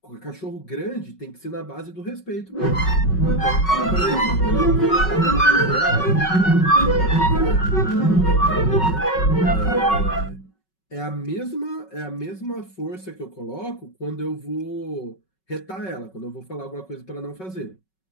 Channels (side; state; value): right; late; 5.3 ms